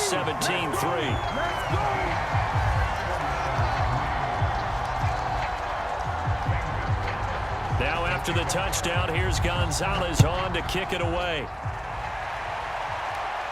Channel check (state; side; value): identical; both; correlation 1.00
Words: Now after the touchdown, here's Gonzalez on to kick it away.